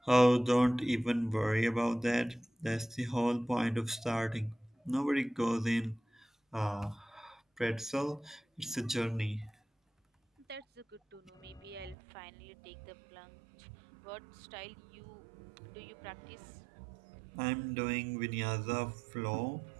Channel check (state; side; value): drops out; left; at 12.0 s